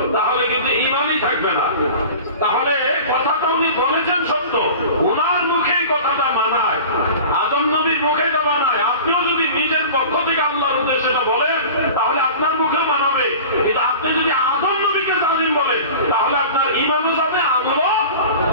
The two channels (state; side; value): inverted; both; correlation -0.38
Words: তাহলে কিন্তু ঈমানই থাকবে না। তাহলে কথাটা উনি বলেছেন সত্য, ওনার মুখেই কথাটা মানায়, আদম নবীর মুখে এটা মানায়। আপনিও যদি নিজের পক্ষ থেকে আল্লাহর উদ্দেশ্যে এটা বলেন, তাহলে আপনার মুখেও মানাবে। কিন্তু আপনি যদি আদম নবীকে জালিম বলেন, তাহলে আপনার ঈমানও যাবে, আমলও